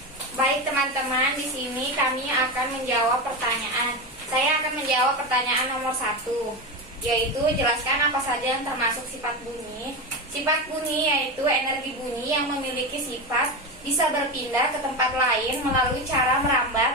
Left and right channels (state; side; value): normal; both; correlation 0.18